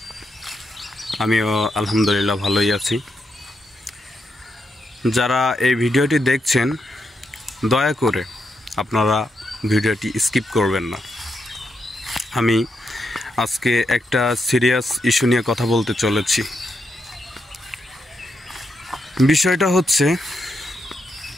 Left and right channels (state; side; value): normal; both; correlation 0.83